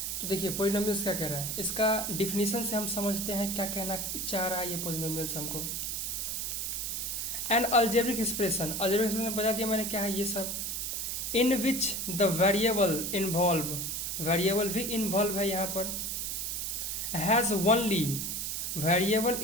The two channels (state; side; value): noise; right; hiss, 2 dB below the sound